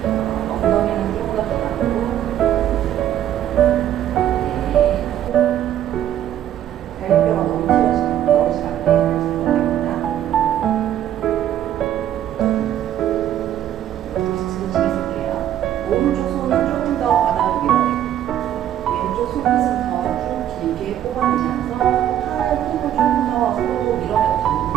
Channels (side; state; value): left; quieter; 11.3 dB